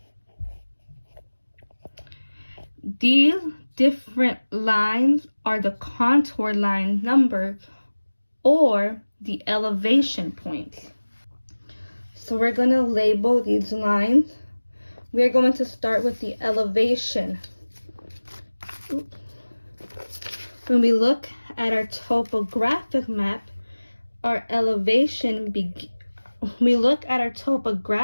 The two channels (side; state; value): both; inverted; correlation -1.00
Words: These different lines are the contour line number or the elevation points. So we're going to label these lines. We're going to start with the elevation. When we look at our topographic map, our elevation